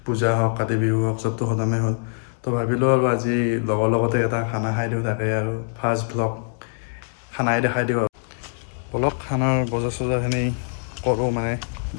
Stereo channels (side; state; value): right; silent; digital silence